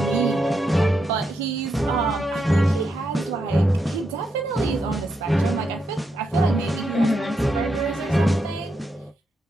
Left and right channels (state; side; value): normal; both; correlation 0.82